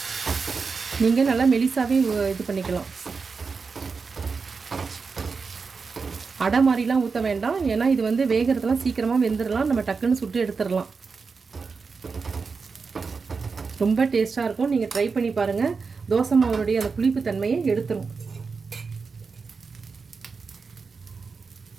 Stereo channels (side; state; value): left; quieter; 4.9 dB